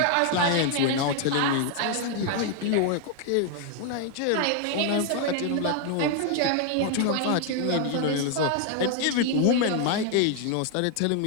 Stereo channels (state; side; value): different; both; correlation 0.00